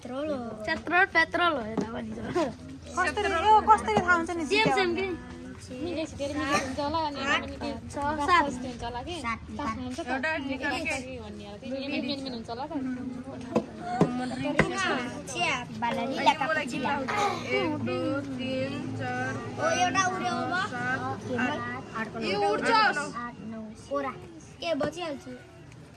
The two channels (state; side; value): identical; both; correlation 1.00